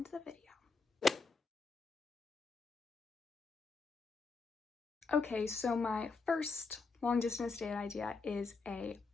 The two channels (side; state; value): right; quieter; 4.3 dB